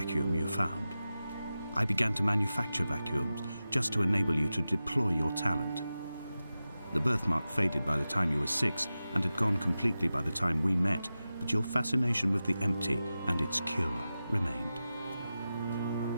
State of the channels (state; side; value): inverted; both; correlation -0.94